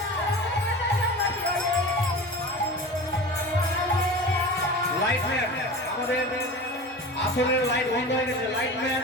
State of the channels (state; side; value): normal; both; correlation 0.33